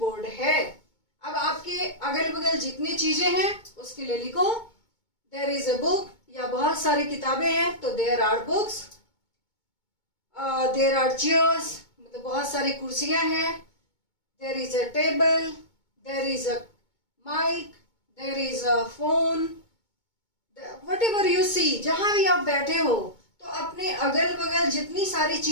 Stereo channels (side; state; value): right; late; 2.2 ms